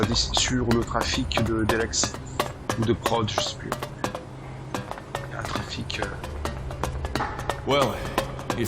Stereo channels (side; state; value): both; identical; correlation 1.00